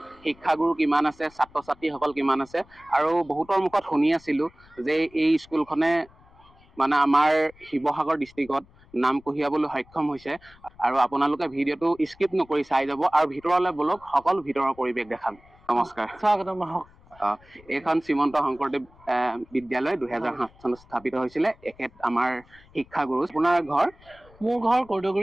শিক্ষাগুৰু কিমান আছে, ছাত্ৰ ছাত্ৰীসকল কিমান আছে, আৰু বহুতৰ মুখত শুনি আছিলোঁ যে এই স্কুলখনে মানে আমাৰ শিৱসাগৰ ডিষ্ট্ৰিক্টত নাম কঢ়িয়াবলৈ সক্ষম হৈছে। আৰু আপোনালোকে ভিডিঅ'টো স্কিপ নকৰি চাই যাব আৰু ভিতৰলৈ বলক, সকলো ভিতৰৰ পৰিৱেশ দেখাম। নমস্কাৰ, স্বাগতম। এইখন শ্ৰীমন্ত শংকৰদেৱ বিদ্যালয় 2007 চনত স্থাপিত হৈছিলে। এখেত আমাৰ শিক্ষাগুৰু। আপোনাৰ ঘৰ? মোৰ ঘৰ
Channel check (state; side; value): noise; left; rumble, 27 dB below the sound